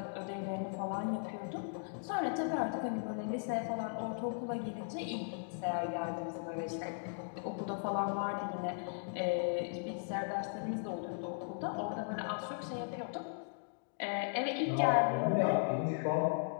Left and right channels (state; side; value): silent; right; digital silence